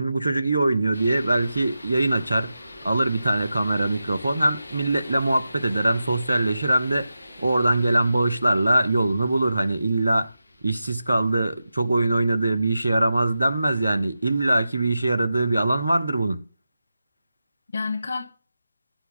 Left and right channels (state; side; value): inverted; both; correlation -0.91